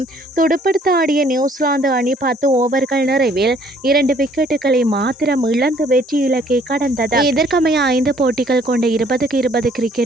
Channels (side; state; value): both; normal; correlation 0.61